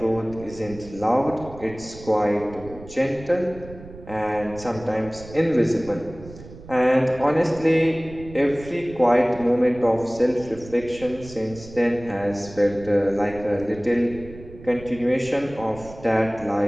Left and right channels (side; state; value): right; noise; rumble, 17 dB below the sound